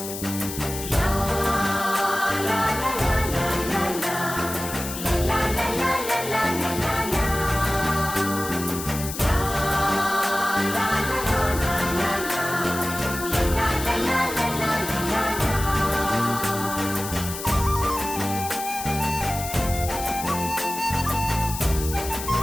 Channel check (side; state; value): left; noise; hiss, 8 dB below the sound